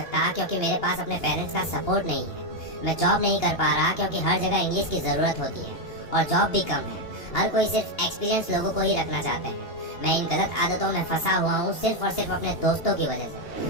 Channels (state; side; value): late; right; 2.8 ms